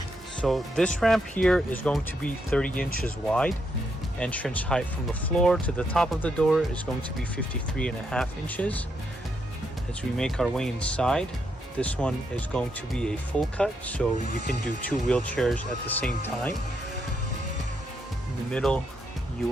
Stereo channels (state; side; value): normal; both; correlation 0.79